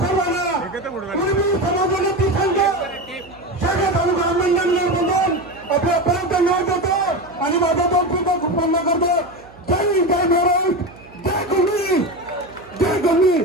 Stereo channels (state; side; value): noise; right; hum, 24 dB below the sound